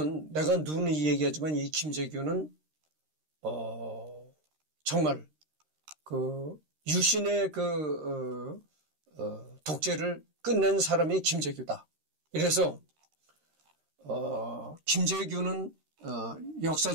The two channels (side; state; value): left; late; 13 ms